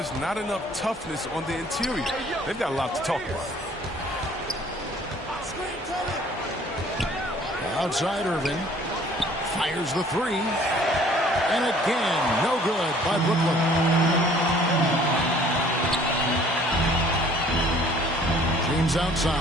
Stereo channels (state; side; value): normal; both; correlation 0.55